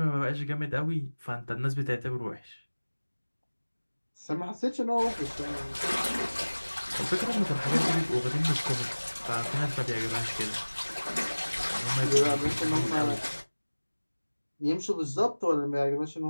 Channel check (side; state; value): both; inverted; correlation -1.00